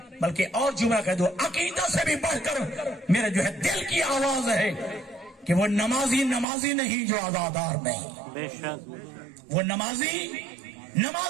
بلکہ اور جملہ کہہ دو, عقیدہ سے بھی بڑھ کر میرے جو ہے دل کی آواز ہے کہ وہ نمازی نہیں جو عزادار نہیں, بے شک وہ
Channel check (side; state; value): left; drops out; at 6.5 s